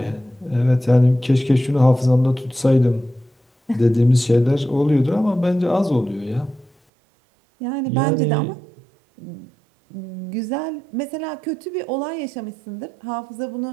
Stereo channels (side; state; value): left; drops out; at 6.7 s